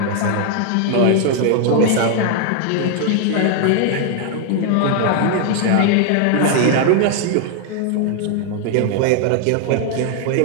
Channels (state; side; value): different; both; correlation 0.00